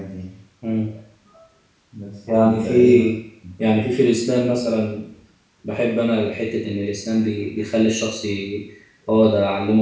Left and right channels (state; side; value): identical; both; correlation 1.00